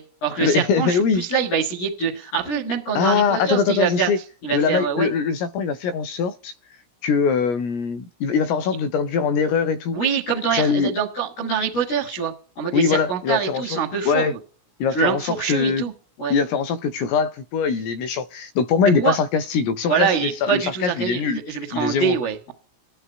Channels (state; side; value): late; right; 17 ms